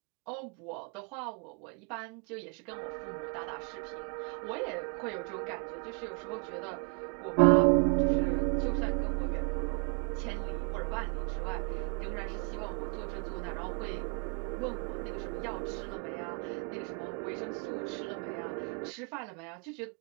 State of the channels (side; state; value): left; quieter; 39.3 dB